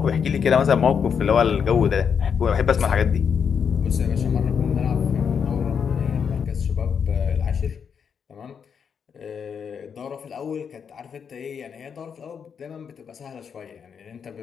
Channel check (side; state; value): right; quieter; 6.9 dB